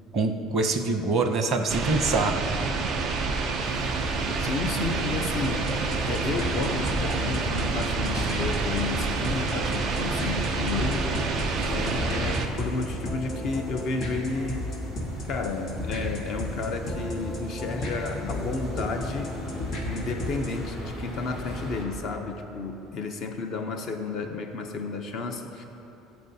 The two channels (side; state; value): both; normal; correlation 0.50